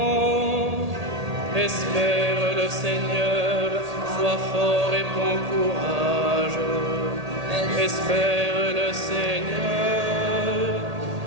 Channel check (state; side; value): late; left; 1.8 ms